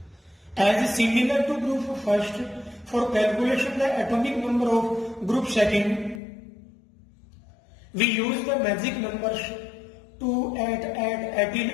As similar to group first, for calculation the atomic number of group second, we use the magic numbers 2, 8, 8,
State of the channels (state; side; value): drops out; right; at 6.2 s